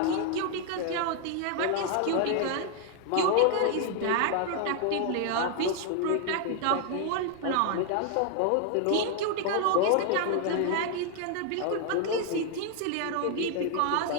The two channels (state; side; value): different; both; correlation 0.00